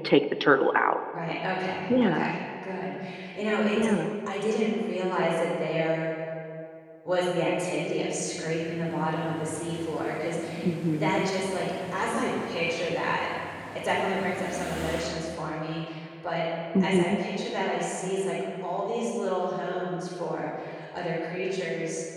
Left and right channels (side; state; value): both; identical; correlation 1.00